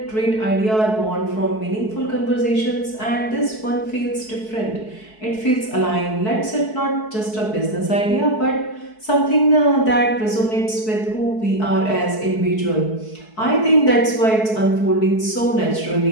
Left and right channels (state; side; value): late; right; 4.6 ms